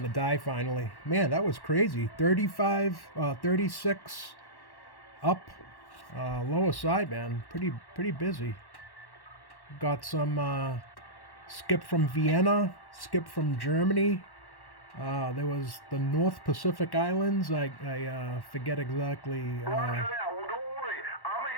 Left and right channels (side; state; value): right; late; 1.1 ms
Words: to die finally. Man, that was crazy. 36 up, lower side, man. Pretty busy. Got some skip from Vienna, skip from Germany. There was the North Pacific Islands. I forget exactly. Roger that. Well, don't worry. I'm a